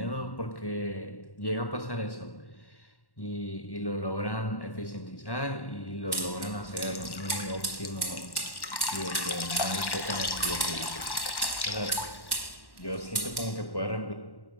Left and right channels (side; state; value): right; late; 1.1 ms